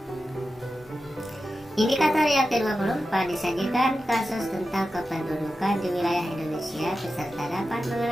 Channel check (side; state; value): both; normal; correlation 0.92